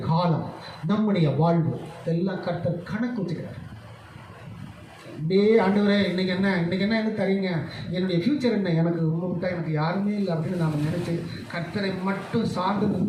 காலம், நம்முடைய வாழ்வு எல்லாம் கர்த்தர் கணக்கு வச்சுக்கிறார். அப்படியே ஆண்டவரே இன்னைக்கு என்ன என்ன தரீங்க, என்னுடைய ஃப்யூச்சர் என்ன, எனக்கு உங்களை விட்டா எனக்கு யாருமே இல்லை அப்படின்னு நாம் நினச்சி கர்த்தரை மட்டும் சார்ந்து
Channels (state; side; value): identical; both; correlation 1.00